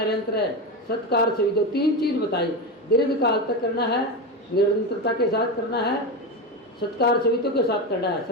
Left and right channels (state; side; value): normal; both; correlation 0.17